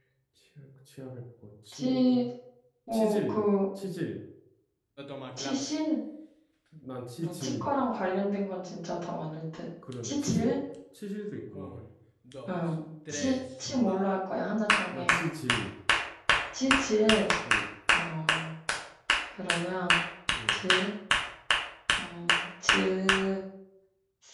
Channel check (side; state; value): both; identical; correlation 1.00